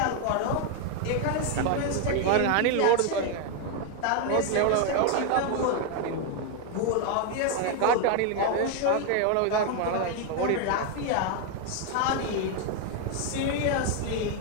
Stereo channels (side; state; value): both; different; correlation 0.01